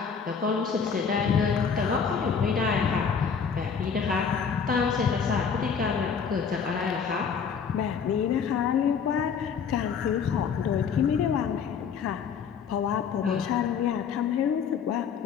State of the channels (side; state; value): right; quieter; 6.5 dB